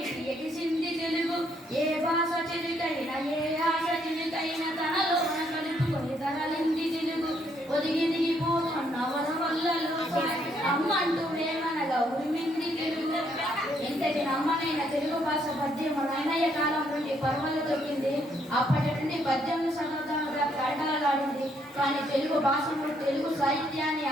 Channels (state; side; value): normal; both; correlation 0.71